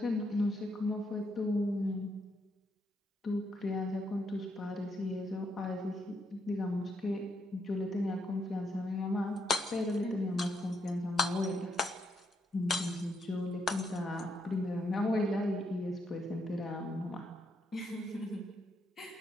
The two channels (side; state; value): both; normal; correlation 0.78